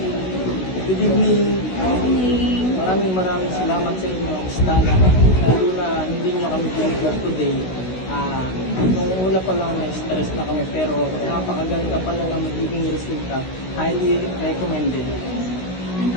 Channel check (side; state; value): right; late; 16 ms